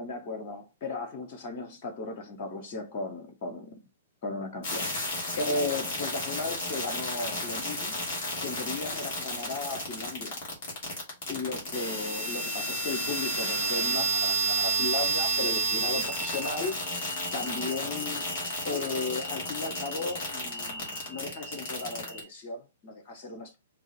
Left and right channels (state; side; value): inverted; both; correlation -0.36